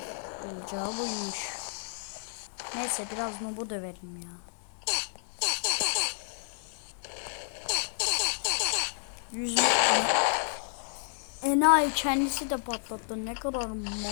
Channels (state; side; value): silent; right; digital silence